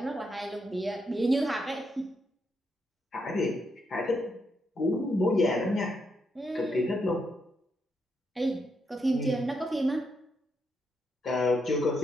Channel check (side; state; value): both; normal; correlation 0.80